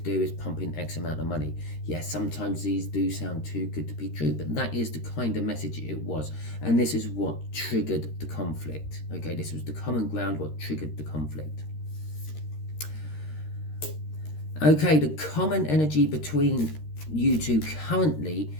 is pump in X amount of money. Yes, sometimes these do sound too good to be true, but that is the kind of message it was. And this is what triggered the conflict. Okay, this was the common ground, what triggered the conflict. Okay, the common energy between you two currently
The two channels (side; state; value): right; late; 13 ms